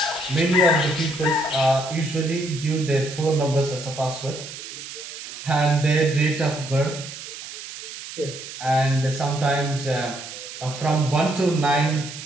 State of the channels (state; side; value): noise; right; hiss, 11 dB below the sound